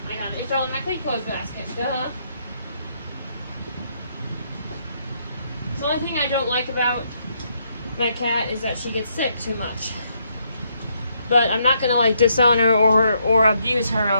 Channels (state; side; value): inverted; both; correlation -0.75